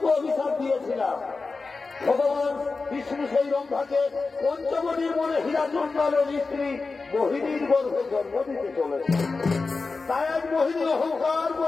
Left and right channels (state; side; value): quieter; right; 4.1 dB